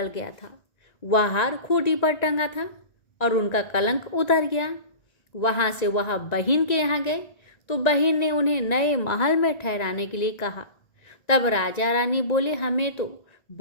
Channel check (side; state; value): right; late; 1.9 ms